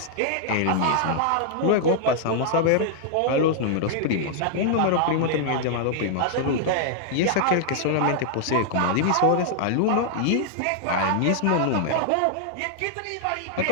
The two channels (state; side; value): different; both; correlation -0.01